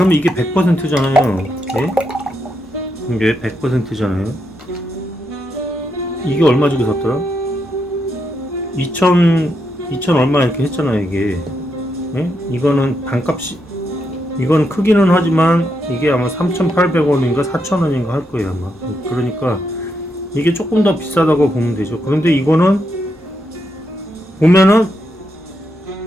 이게 100%잖아요. 예? 이게 100%잖아요. 이게 얼마 주고 샀더라? 2000 얼마 이렇게 했잖아요 이게. 예? 이거는 반값이, 이건 크기는 하지만 이게 아마 3,800원인가 4,000원인가 할 거예요 아마. 그러니까 이게 조금 더 비싸다고 보면 되죠. 그런데 이거는 보면은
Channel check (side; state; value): both; normal; correlation 0.81